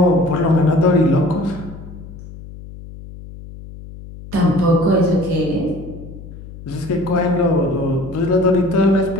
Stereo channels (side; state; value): left; noise; hum, 15 dB below the sound